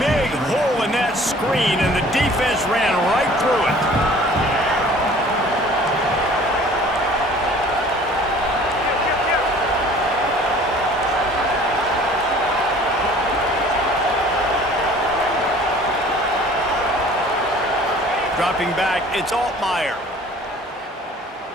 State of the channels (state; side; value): normal; both; correlation 0.50